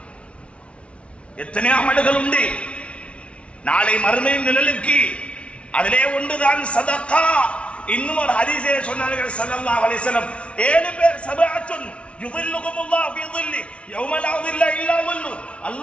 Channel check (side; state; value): right; late; 0.061 ms